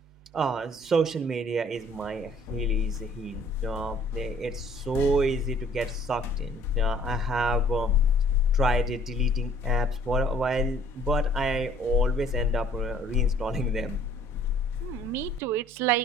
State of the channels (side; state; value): both; normal; correlation 0.57